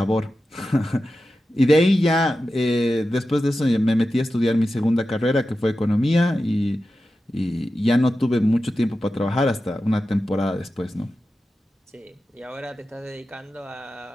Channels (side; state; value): both; normal; correlation 0.92